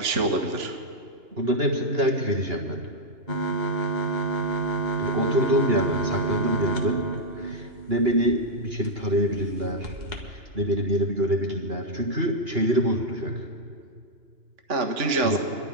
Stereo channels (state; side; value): late; left; 2.9 ms